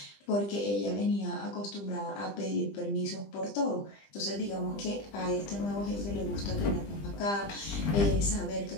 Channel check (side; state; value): right; late; 20 ms